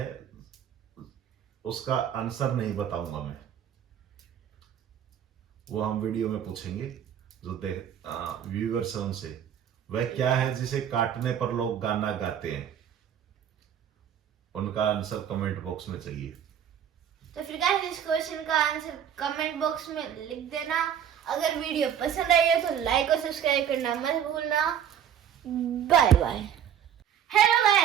उसका आंसर नहीं बताऊंगा मैं, वो हम वीडियो में पूछेंगे जो व्यूअर्स हैं उनसे। वह क्या है जिसे काटने पर लोग गाना गाते हैं? उनका आंसर कमेंट बॉक्स में चाहिए। तो फिर गाइस इस क्वेश्चन का आंसर कमेंट बॉक्स में लिख देना। अगर वीडियो पसंद आई है तो लाइक और सब्सक्राइब करना मत भूलना। Bye bye. Hello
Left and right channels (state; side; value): quieter; left; 9.1 dB